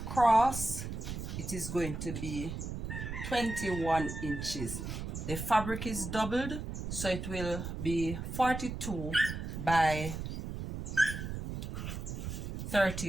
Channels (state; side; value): noise; right; rumble, 5 dB below the sound